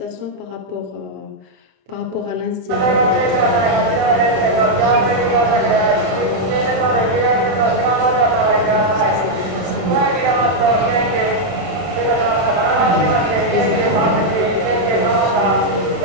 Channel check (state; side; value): late; left; 31 ms